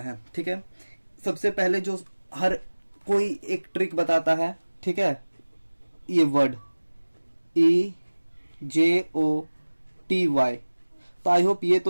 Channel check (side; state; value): both; inverted; correlation -1.00